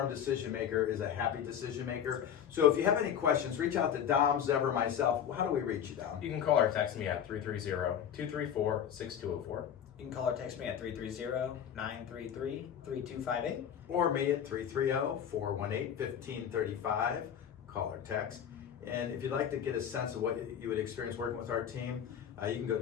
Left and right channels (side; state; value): right; quieter; 8.9 dB